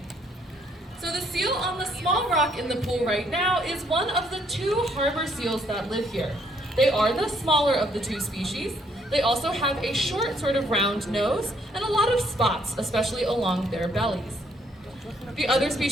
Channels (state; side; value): normal; both; correlation 0.68